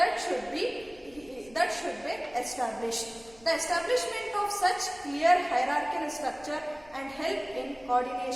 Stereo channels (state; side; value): noise; left; rumble, 26 dB below the sound